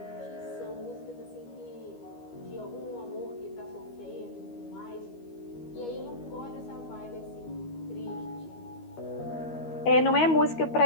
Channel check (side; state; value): right; late; 13 ms